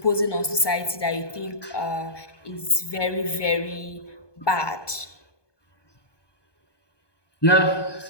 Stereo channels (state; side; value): late; right; 1.2 ms